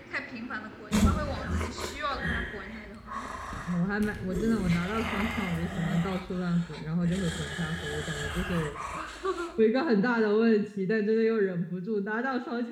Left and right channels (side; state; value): both; identical; correlation 1.00